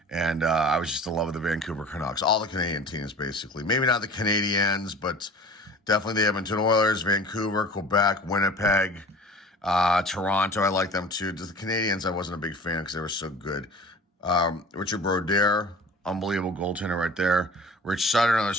and I was just in love with the Vancouver Canucks. All the Canadian teams, basically. Maybe not the Canadiens, but definitely the Edmonton Oilers, Vancouver, Quebec, Winnipeg, Toronto. I like them too. Just the Canadiens, I wasn't a big fan because they were so good. Richard Brodeur, unbelievable goaltender right there. Rich Sutter, another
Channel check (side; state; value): both; normal; correlation 0.43